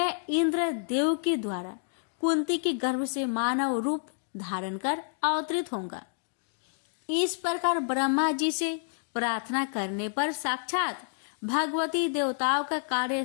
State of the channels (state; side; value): silent; right; digital silence